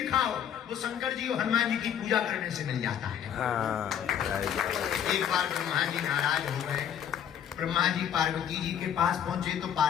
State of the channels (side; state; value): right; quieter; 9.1 dB